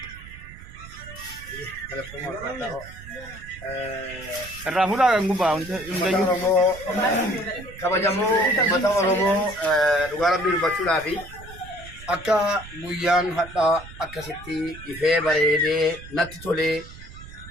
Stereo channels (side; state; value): right; noise; rumble, 16 dB below the sound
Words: الرافولا كان قبا kabajamoo uummata Oromoo dhugaa rabbii dubbachuudhaa fi akka guyyaan hadhaa akkasitti ifee bareedee natti tolee